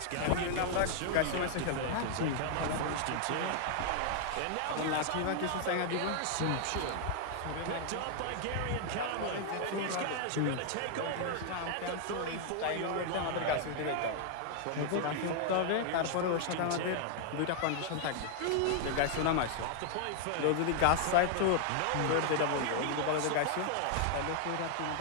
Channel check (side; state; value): both; different; correlation 0.00